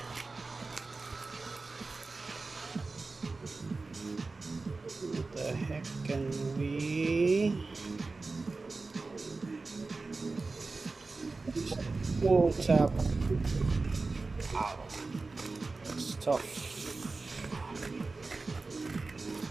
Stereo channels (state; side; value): quieter; left; 3.7 dB